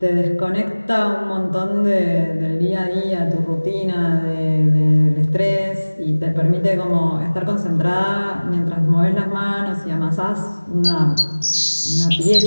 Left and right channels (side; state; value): both; inverted; correlation -1.00